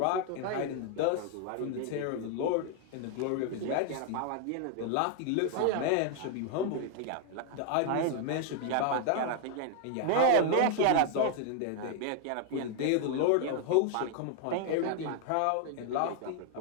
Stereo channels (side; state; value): both; different; correlation 0.00